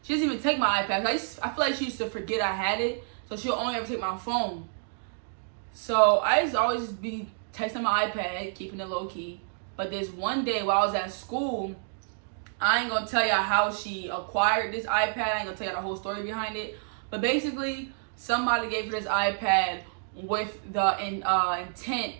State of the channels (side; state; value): left; silent; digital silence